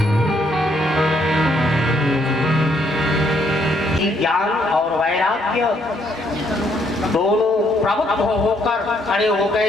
कि ज्ञान और वैराग्य दोनों प्रबुद्ध होकर खड़े हो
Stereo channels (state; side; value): normal; both; correlation 0.71